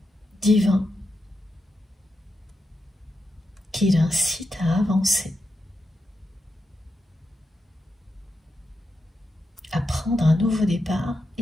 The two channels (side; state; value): both; normal; correlation 0.87